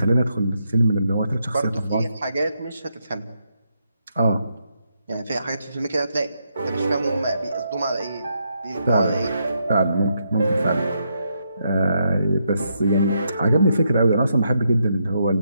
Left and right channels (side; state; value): both; inverted; correlation -0.79